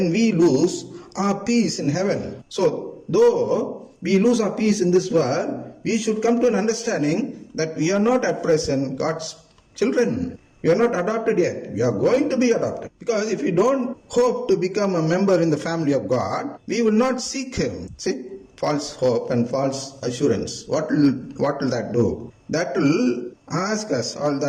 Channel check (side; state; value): both; identical; correlation 1.00